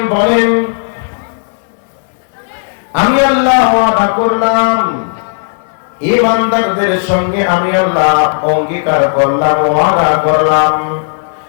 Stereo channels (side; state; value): right; silent; digital silence